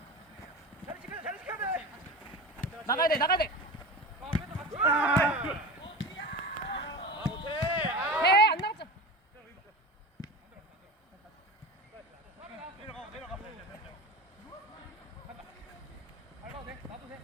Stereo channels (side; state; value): both; normal; correlation 0.30